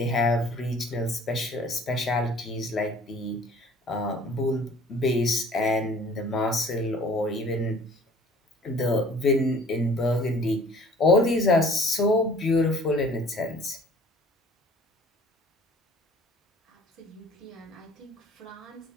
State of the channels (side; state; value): both; normal; correlation 0.52